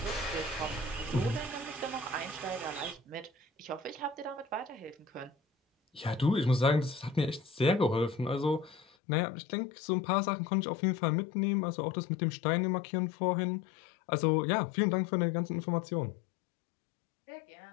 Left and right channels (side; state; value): right; drops out; at 8.8 s